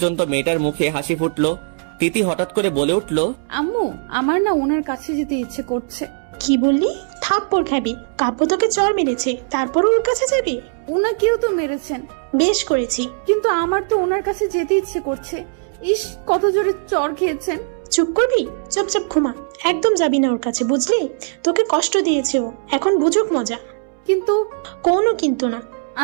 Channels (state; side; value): silent; left; 66 dB below the other